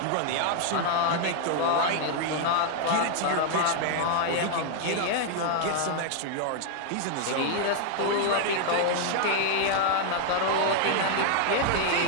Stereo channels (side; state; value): both; different; correlation 0.00